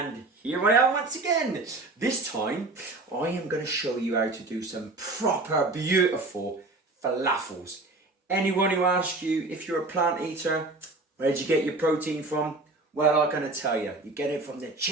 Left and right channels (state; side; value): quieter; left; 3.2 dB